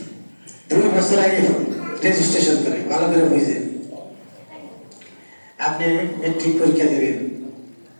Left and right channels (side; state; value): both; inverted; correlation -1.00